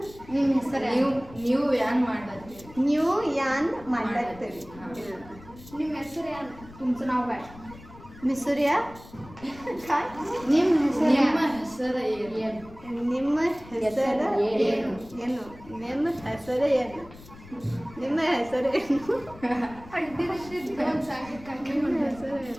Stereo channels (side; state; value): left; noise; rumble, 20 dB below the sound